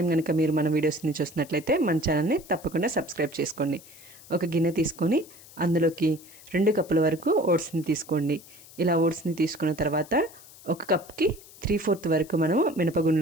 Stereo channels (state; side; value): noise; left; hiss, 21 dB below the sound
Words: కనుక మీరు మన వీడియోస్ని చూసినట్లయితే మన ఛానల్ని తప్పకుండా సబ్స్క్రైబ్ చేసుకోండి. ఒక గిన్నె తీసుకొని అందులోకి 2 కప్పుల వరకు ఓట్స్ని తీసుకోండి. ఇలా ఓట్స్ని తీసుకున్న తర్వాత 1 కప్కి 3/4 వరకు మనం